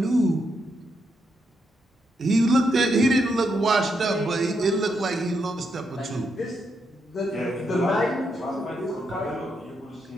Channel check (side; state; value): both; normal; correlation 0.80